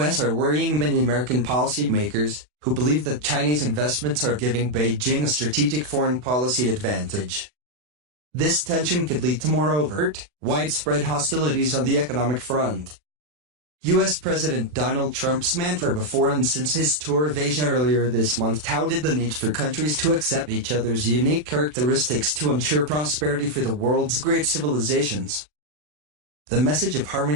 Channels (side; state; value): left; late; 40 ms